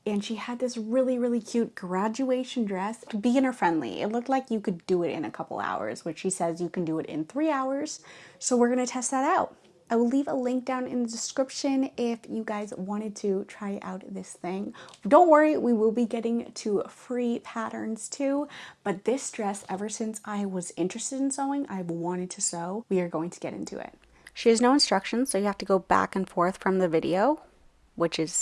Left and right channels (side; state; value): both; identical; correlation 1.00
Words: and she had this really cute graduation dress, beginner friendly. It looked like you could do it in a couple hours, which she says you can do it in 3 hours. So we're gonna test that out. I will leave a link down in the description if you guys wanted to try out this thing. Don't worry, we will be getting to free patterns too, but this dress, ever since I was interested in sewing, I've wanted to sew. We are going to get into it. She has no instructions, so you have to go back and forth from the video, which